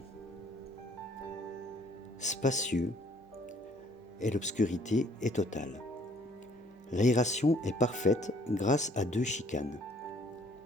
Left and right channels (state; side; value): normal; both; correlation 0.60